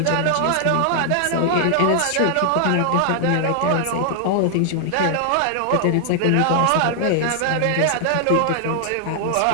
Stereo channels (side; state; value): both; different; correlation 0.00